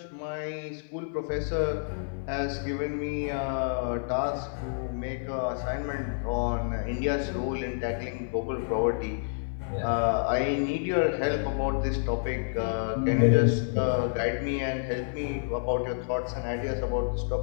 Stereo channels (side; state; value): right; silent; 59 dB below the other